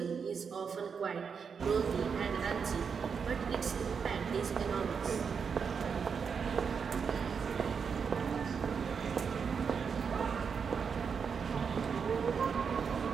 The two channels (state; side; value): quieter; left; 6.2 dB